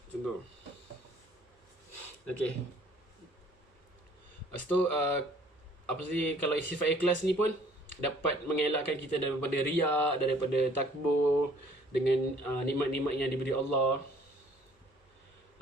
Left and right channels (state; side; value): normal; both; correlation 0.57